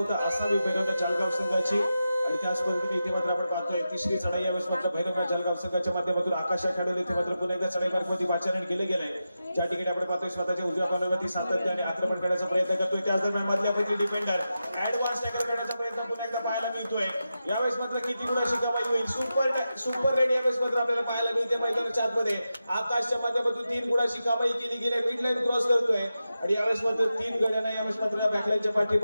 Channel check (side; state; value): both; inverted; correlation -0.90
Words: असावी भैरवनाथ जालगाव संघाची. आणि त्याच पद्धतीने इथे मात्र आपण पाहतोय तिसरी चढाई यावेळेस मात्र भैरवनाथ जालगाव संघाच्या माध्यमातून आकाश या खेळाडूला इथे मात्र पुन्हा एकदा चढाई मार्फत पाचारण केले गेलंय. ज्या ठिकाणी आपण पाहतोय स्वतःच्या उजव्या कॉर्नरवरती सातत्याने आक्रमण करण्याचा प्रयत्न करतोय. त्याच दरम्यान मधल्यापैकी डिफेंडर ऍडव्हान्स टॅकल करण्याचा प्रयत्न पुन्हा एकदा पाहायला मिळतोय. यावेळेस मात्र किती गुणाची कमाई होईल. सुपर रेड यावेळेस मात्र आपल्याला पाहायला मिळते मैदानाच्या आतमध्ये. आकाशच्या माध्यमातून 3 गुणाची कमाई केली गेली. मिड लाईन क्रॉस करतोय आणि यावेळेस मात्र 3 गड्यांना यावेळेस मात्र बॅकलाईनच्या पाठी